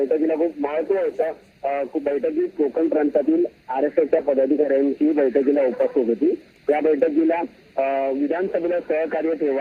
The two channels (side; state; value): both; identical; correlation 1.00